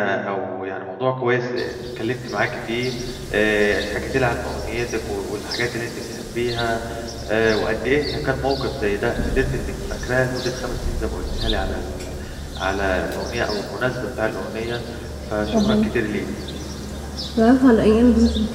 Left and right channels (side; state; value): both; identical; correlation 1.00